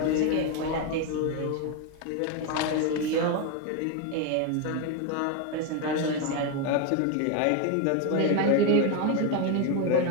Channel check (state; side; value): different; both; correlation 0.01